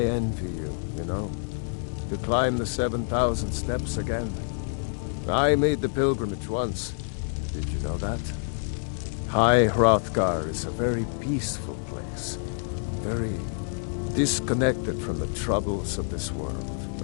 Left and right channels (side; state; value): right; silent; digital silence